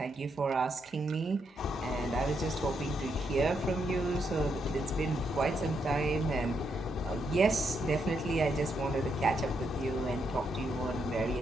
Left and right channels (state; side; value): normal; both; correlation 0.79